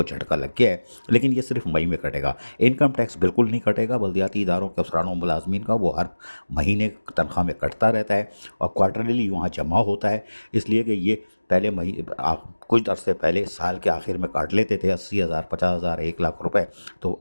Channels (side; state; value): both; inverted; correlation -1.00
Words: झटका लग गया है। लेकिन ये सिर्फ मई में कटेगा, इनकम टैक्स बिल्कुल नहीं कटेगा। बल्दियाती इदारों के अफसरान और मुलाजमीन का वो हर महीने तनख्वाह में कटता रहता है और क्वार्टरली वहाँ जमा होता है। इसलिए कि ये पहले कुछ अरसे पहले साल के आखिर में काट लेते थे 80,000 50,000 1 लाख रुपए, तो